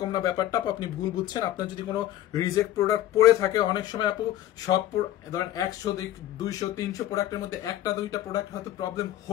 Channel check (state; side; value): quieter; right; 13.2 dB